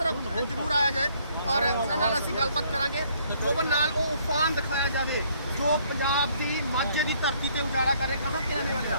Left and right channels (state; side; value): inverted; both; correlation -0.64